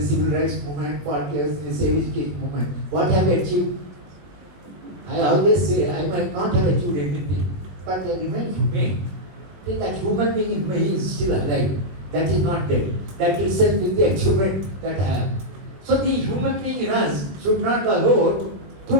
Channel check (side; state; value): left; late; 21 ms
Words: civil rights movement, 40 years in the civil education movement, what have I achieved? I always say I might not have achieved anything, but I remain humane. Think that human being in me is still alive. That is not dead. That itself is the achievement that I have. So the human being in us should not allow to